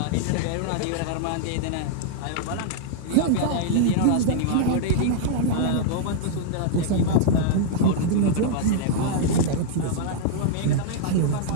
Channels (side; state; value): both; different; correlation -0.01